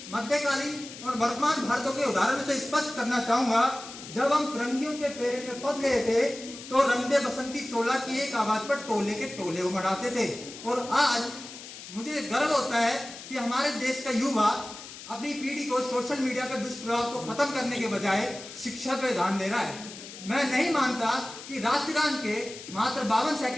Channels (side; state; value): left; noise; hiss, 14 dB below the sound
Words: मध्यकालीन और वर्तमान भारतों के उदाहरण से स्पष्ट करना चाहूंगा, जब हम फिरंगियों के फेरे में फंस गए थे तो रंगदे बसंती चोला की एक आवाज पर टोले के टोले उमड़ाते थे। और आज मुझे गर्व होता है कि हमारे देश का युवा अपनी पीढ़ी को सोशल मीडिया के दुष्प्रभाव को खत्म करने के बजाय शिक्षा पर ध्यान दे रहा है। मैं नहीं मानता कि राष्ट्रगान के मात्र 52